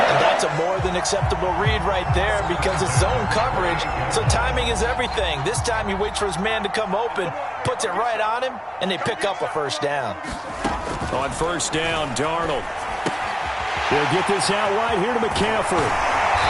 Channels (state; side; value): identical; both; correlation 1.00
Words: that's a more than acceptable read right there because it's zone coverage, so timing is everything. This time he waits for his man to come open, puts it right on him, and they pick up a first down. On 1st down, Darnold. They'll get this out wide here to McCaffrey.